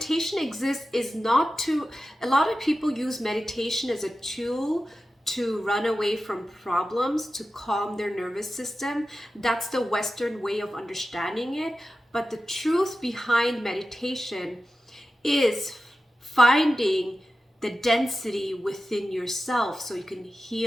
exists is not to, a lot of people use meditation as a tool to run away from problems, to calm their nervous system. That's the Western way of understanding it. But the truth behind meditation is finding the density within yourself so you can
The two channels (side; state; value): both; normal; correlation 0.93